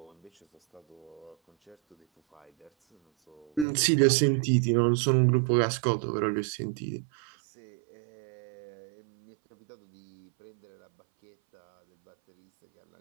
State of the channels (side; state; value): left; drops out; at 3.7 s